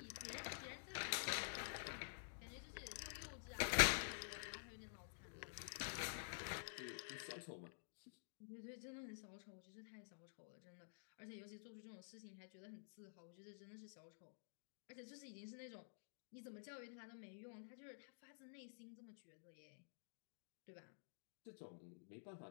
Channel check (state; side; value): silent; right; digital silence